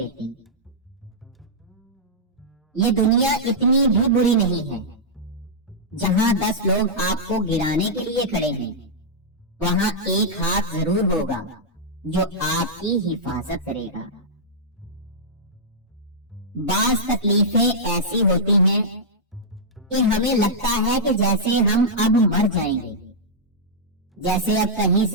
یہ دنیا اتنی بھی بری نہیں ہے، جہاں 10 لوگ آپ کو گرانے کے لیے کھڑے ہیں وہاں ایک ہاتھ ضرور ہوگا جو آپ کی حفاظت کرے گا۔ بعض تکلیفیں ایسی ہوتی ہیں کہ ہمیں لگتا ہے کہ جیسے ہم اب مر جائیں گے، جیسے اب کہیں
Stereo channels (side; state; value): both; normal; correlation -0.10